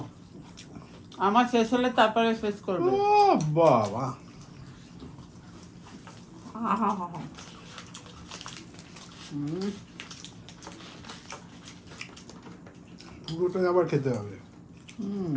আমার শেষ হলে তারপরে শেষ করবে। ও বাবা, হুম, পুরোটাই আবার খেতে হবে। হুম।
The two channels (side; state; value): both; identical; correlation 1.00